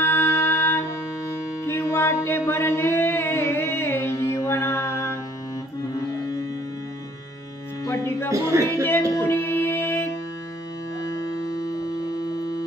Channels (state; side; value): normal; both; correlation 0.59